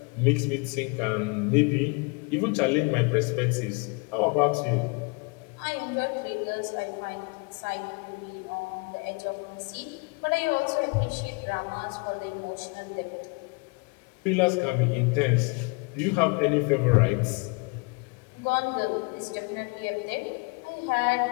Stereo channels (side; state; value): right; quieter; 31.1 dB